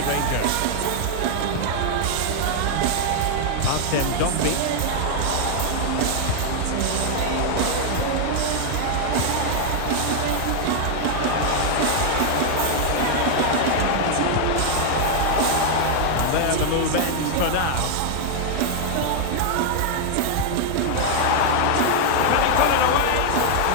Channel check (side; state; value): both; different; correlation 0.00